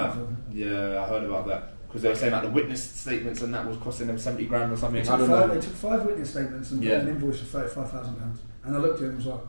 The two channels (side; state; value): both; inverted; correlation -1.00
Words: Yeah, I heard about that. Because they were saying like the witness statements and that was costing them 70 grand or something. I don't know. They took 5 witness statements and put an invoice for £35,000. And I looked at it and was like,